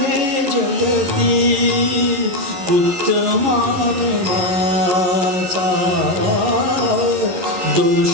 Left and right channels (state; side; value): late; left; 11 ms